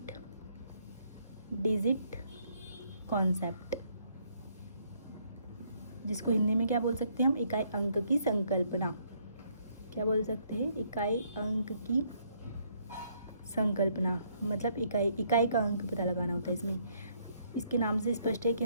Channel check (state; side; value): inverted; both; correlation -0.69